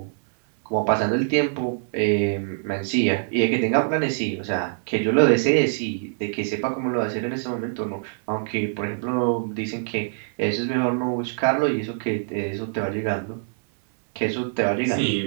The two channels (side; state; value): left; silent; 62 dB below the other